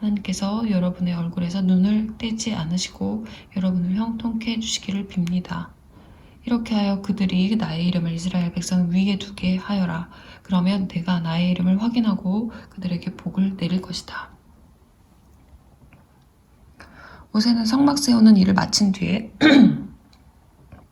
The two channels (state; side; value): identical; both; correlation 1.00